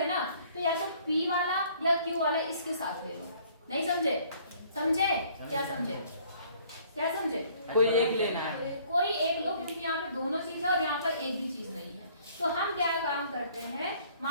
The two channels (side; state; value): both; inverted; correlation -0.58